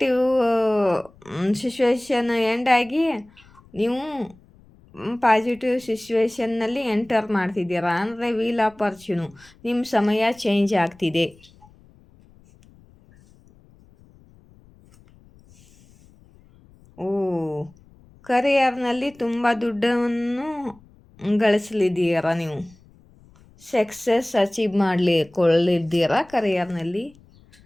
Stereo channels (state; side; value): noise; left; rumble, 27 dB below the sound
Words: ಸಿಚುವೇಶನ್ ಎಂಡ್ ಆಗಿ ನೀವು ಪಾಸಿಟಿವ್ ಸಿಚುವೇಶನ್ನಲ್ಲಿ ಎಂಟರ್ ಮಾಡ್ತಿದ್ದೀರಾ. ಅಂದರೆ ವೀಲ್ ಆಫ್ ಫಾರ್ಚ್ಯೂನು, ನಿಮ್ಮ ಸಮಯ ಚೇಂಜ್ ಆಗ್ತಿದೆ. ಕರಿಯರ್ನಲ್ಲಿ ತುಂಬ ದುಡ್ಡನ್ನು ಗಳಿಸಲಿದ್ದೀರಾ, ನೀವು ಸಕ್ಸಸ್ ಅಚೀವ್ ಮಾಡಲಿದ್ದೀರಾ ಕರಿಯರ್ನಲ್ಲಿ.